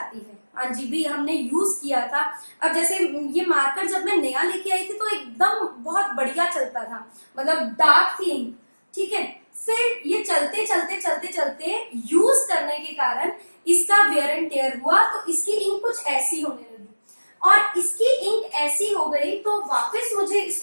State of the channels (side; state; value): both; inverted; correlation -1.00